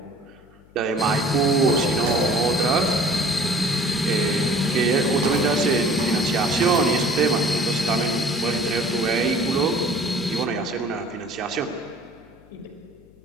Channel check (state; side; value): noise; left; hum, 28 dB below the sound